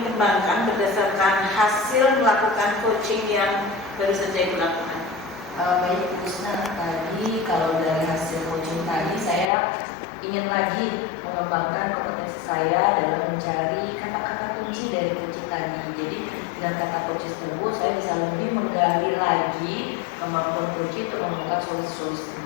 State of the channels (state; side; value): drops out; right; at 9.5 s